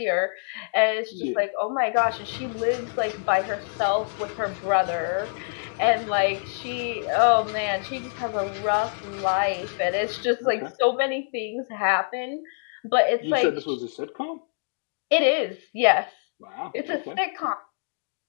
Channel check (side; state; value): right; silent; digital silence